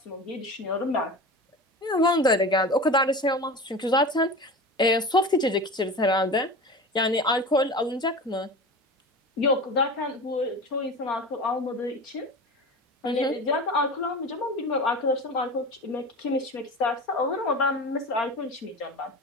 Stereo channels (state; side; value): normal; both; correlation 0.31